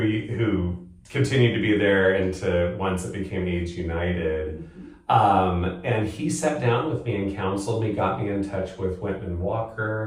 continued to be there into once it became AIDS United. And he sat down with me and counseled me, got me in touch with Whitman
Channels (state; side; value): identical; both; correlation 1.00